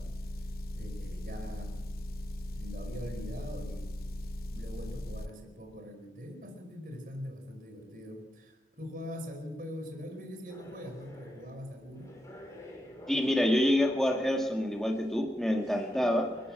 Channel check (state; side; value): normal; both; correlation 0.85